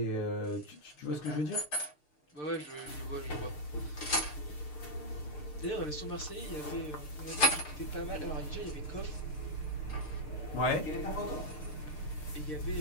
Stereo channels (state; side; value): late; right; 6.7 ms